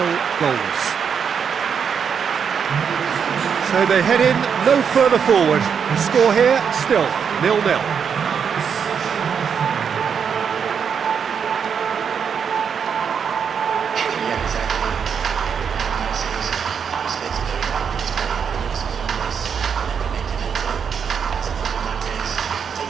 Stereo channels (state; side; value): quieter; left; 7.0 dB